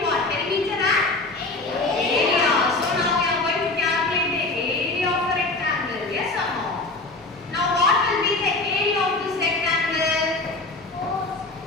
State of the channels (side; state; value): right; quieter; 3.2 dB